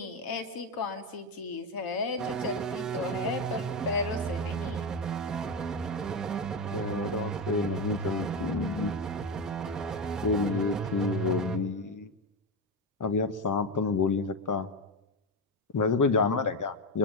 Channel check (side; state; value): both; normal; correlation 0.13